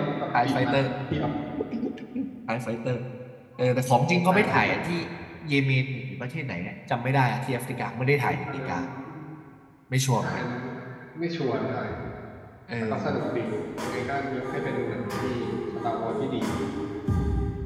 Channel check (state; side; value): identical; both; correlation 1.00